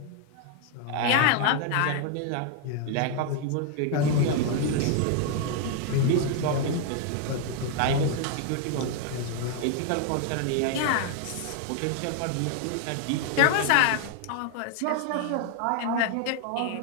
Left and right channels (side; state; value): both; different; correlation 0.01